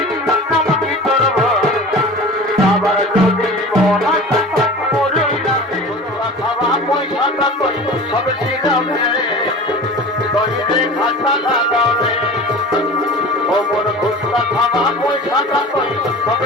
নাম কি করব আবার যদি মনা মরে যাবে খাওয়া পয়সাটা কই সব শিখাবে তইরে খাতা লাগাবে ও মোর খুশলা খাওয়া পয়সাটা কই সব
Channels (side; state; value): both; normal; correlation 0.37